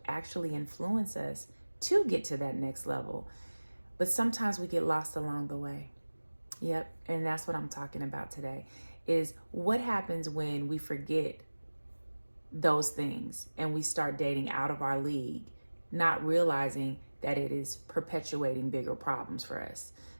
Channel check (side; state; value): both; inverted; correlation -1.00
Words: actually influence us to get to that next level. But sometimes we get lost along the way. Yep, and that's what I'm talking about today, is what happens when we forget those things and we start dating out of our league, not realizing that it is perpetuating bigger problems for us.